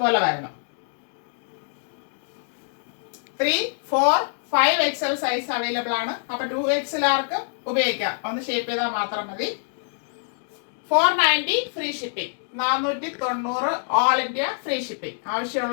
വരുന്നു. 3, 4, 5XL സൈസ് അവൈലബിൾ ആണ്. അപ്പൊ 2XLകാർക്ക് ഉപയോഗിക്കാം. ഒന്ന് ഷേപ്പ് ചെയ്താൽ മാത്രം മതി. 490 free shipping. 490 all India free shipping.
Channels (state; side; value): silent; right; digital silence